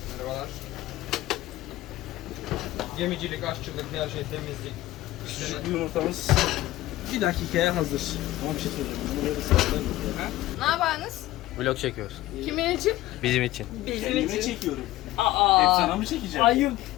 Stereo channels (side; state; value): right; quieter; 16.2 dB